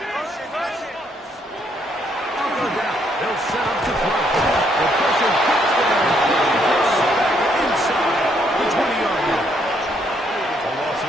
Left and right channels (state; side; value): normal; both; correlation 0.71